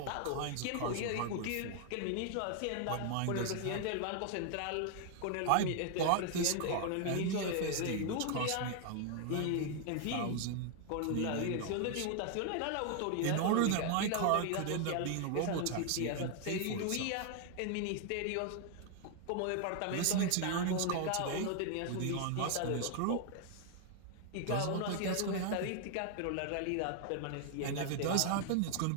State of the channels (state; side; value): different; both; correlation 0.00